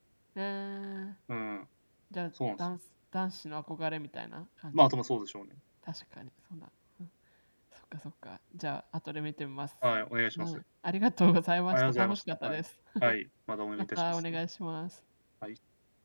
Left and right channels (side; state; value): both; inverted; correlation -1.00